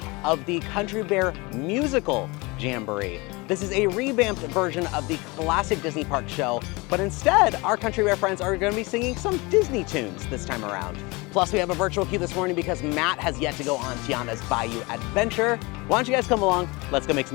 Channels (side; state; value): right; quieter; 25.3 dB